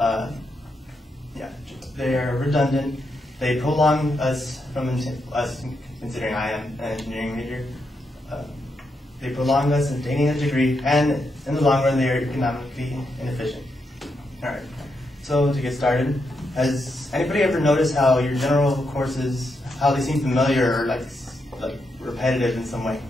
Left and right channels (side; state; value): both; normal; correlation 0.83